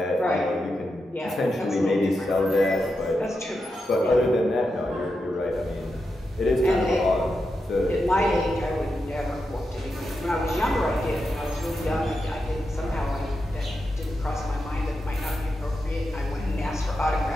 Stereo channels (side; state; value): both; normal; correlation 0.87